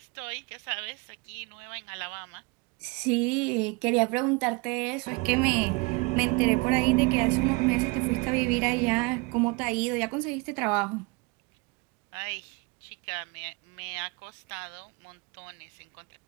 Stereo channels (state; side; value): quieter; left; 27.6 dB